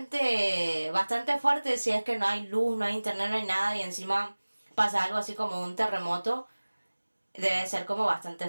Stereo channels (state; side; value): inverted; both; correlation -1.00